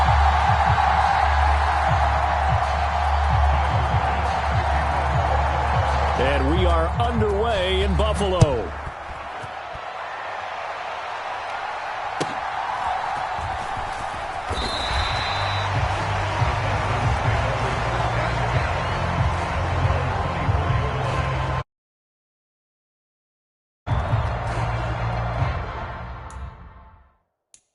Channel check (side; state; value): both; identical; correlation 1.00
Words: And we are underway in Buffalo.